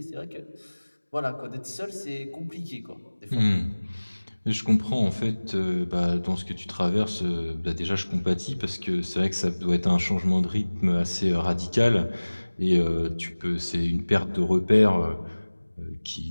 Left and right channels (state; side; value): inverted; both; correlation -1.00